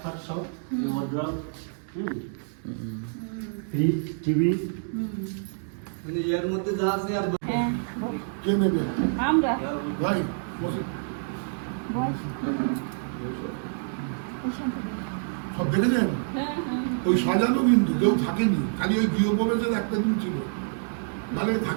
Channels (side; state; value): left; silent; digital silence